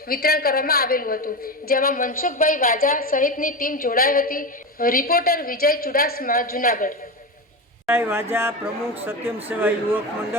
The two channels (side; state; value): both; normal; correlation 0.20